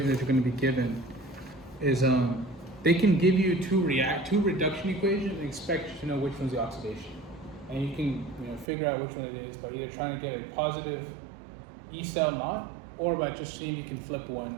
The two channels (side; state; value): left; drops out; at 8.7 s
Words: that you're going to be given is they can give you two reduction equations and expect you to know which one's the oxidation. And you can figure out which one it is by either trying to get a positive E cell knot or by just seeing if you can flip one